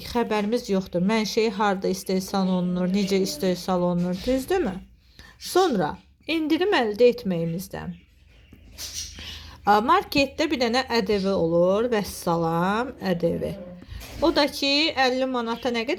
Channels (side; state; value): both; identical; correlation 1.00